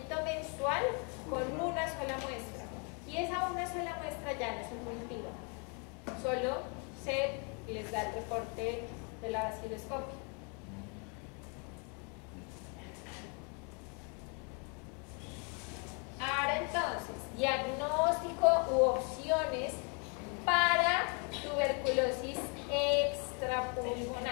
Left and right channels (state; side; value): quieter; right; 36.3 dB